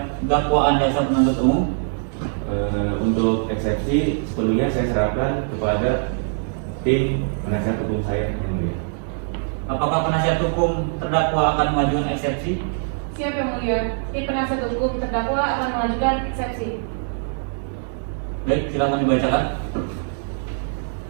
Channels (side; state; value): left; silent; digital silence